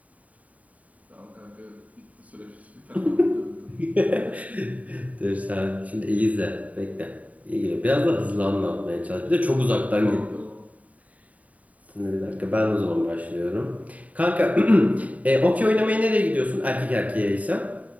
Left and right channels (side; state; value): left; late; 0.070 ms